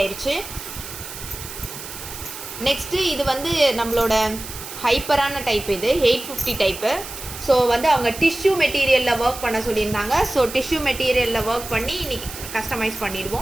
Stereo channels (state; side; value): noise; right; hiss, 11 dB below the sound